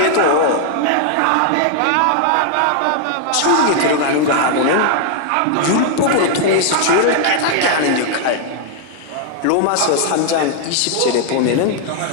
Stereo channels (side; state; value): both; different; correlation 0.00